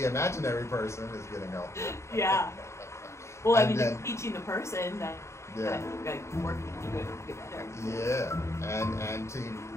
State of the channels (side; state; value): right; late; 0.14 ms